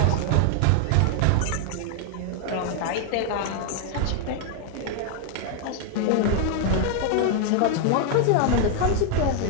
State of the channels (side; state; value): both; different; correlation 0.00